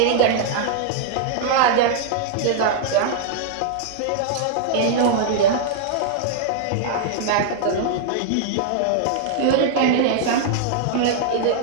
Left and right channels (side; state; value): both; different; correlation -0.01